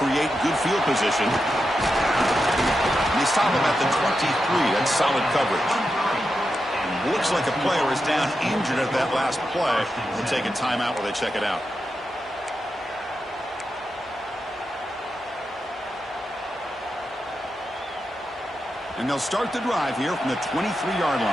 good field position. And they stop him at the 23. That's solid coverage. Looks like a player is down injured at that last play. We'll take a timeout while they check it out. And they'll start the drive here from the 23-yard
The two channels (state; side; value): normal; both; correlation 0.88